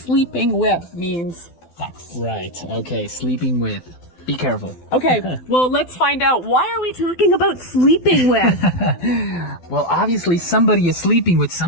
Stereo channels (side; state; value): right; late; 12 ms